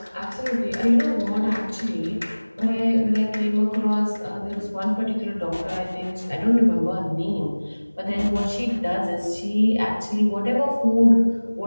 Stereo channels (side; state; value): both; inverted; correlation -1.00